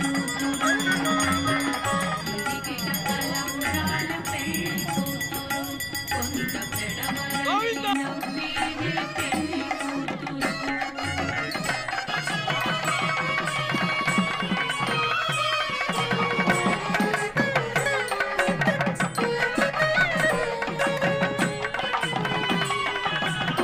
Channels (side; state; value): both; identical; correlation 1.00